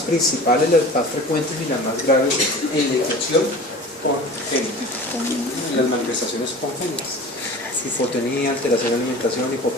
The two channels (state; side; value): normal; both; correlation 0.38